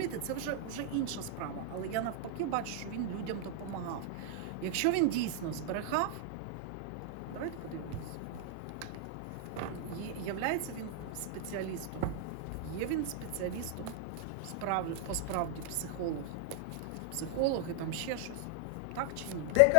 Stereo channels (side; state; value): both; different; correlation 0.00